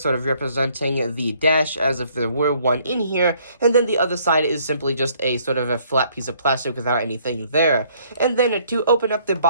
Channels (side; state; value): both; inverted; correlation -0.63